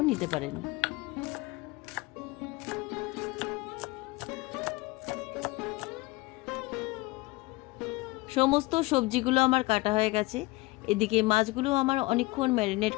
নিতে পারেন। সমস্ত সবজিগুলো আমার কাটা হয়ে গেছে। এদিকে মাছগুলো আমার অনেকক্ষণ ম্যারিনেট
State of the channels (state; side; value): quieter; right; 22.4 dB